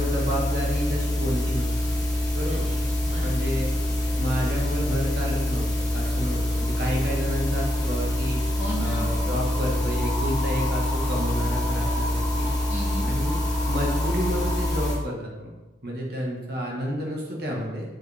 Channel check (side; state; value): both; normal; correlation 0.82